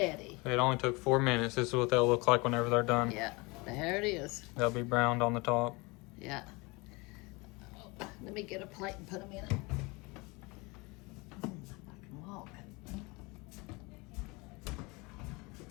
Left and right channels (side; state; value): right; quieter; 25.9 dB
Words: It only took 4 minutes. This is what they'll look like whenever they're done. Yeah, there it is. They'll be browned on the top. Yeah. Oh, let me get a plate and put them in it. I can walk.